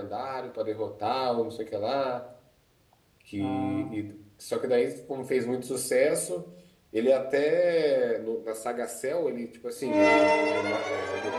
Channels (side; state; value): both; identical; correlation 1.00